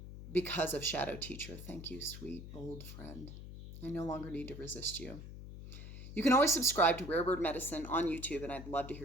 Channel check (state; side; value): noise; left; hum, 11 dB below the sound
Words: because of Shadow Teacher. Thank you, sweet old friend. I no longer need to resist you. You can always subscribe to Rare Bird Medicine on YouTube, and I'd love to